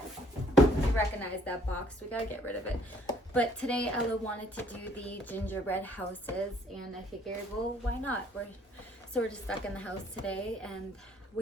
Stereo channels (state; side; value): normal; both; correlation 0.62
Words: you recognize that box. We gotta get rid of it. But today Ella wanted to do the gingerbread houses, and I figured, well, why not? We're just stuck in the house today, and